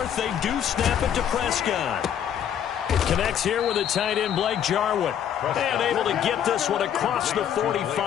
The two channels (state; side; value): quieter; right; 9.4 dB